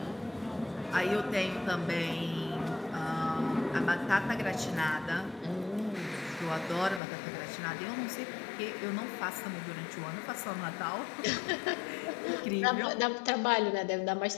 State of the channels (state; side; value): drops out; right; at 7.0 s